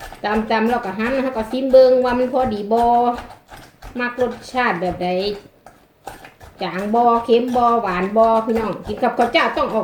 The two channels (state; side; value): identical; both; correlation 1.00